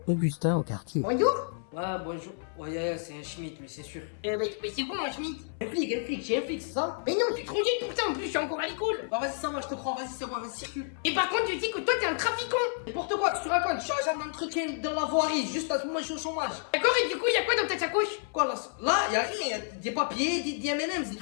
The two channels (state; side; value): silent; right; 58 dB below the other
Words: Augustin au quartier. Bonjour. Ouais, bonjour. Ouais, c'est un Schmitt, mais c'est sûr. Mais c'est bon, un Schmitt. Un flic, j'ai un flic, c'est ça? Mais non, tu es trop vieille pour ça, en plus, je suis encore à l'école. Bah, vas-y, ça va, je te crois, vas-y, c'est bon, vas-y, circule. Et par contre, tu dis que toi, t'es un trafiquant. N'importe quoi, tu te racontes, je suis agent d'entretien dans la voirie, juste à ce moment, je suis au chômage. D'accord, et du coup, y'a quoi dans ta sacoche? Quoi, là, y'a rien, y'a des papiers, des M&M's, des